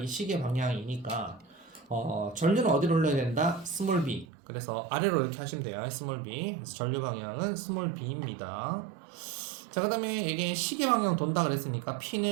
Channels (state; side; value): drops out; left; at 4.2 s